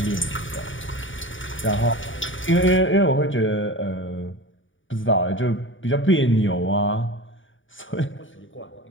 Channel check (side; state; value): right; late; 0.57 ms